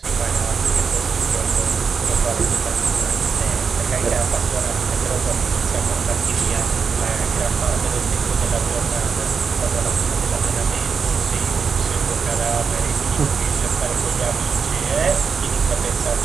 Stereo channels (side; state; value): left; quieter; 5.8 dB